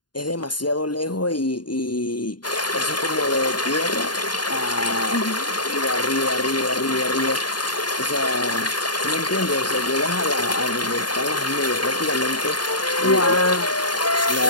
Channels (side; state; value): right; late; 0.70 ms